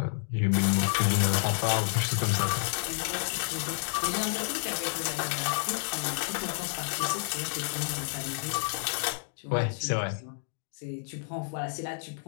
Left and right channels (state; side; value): silent; right; digital silence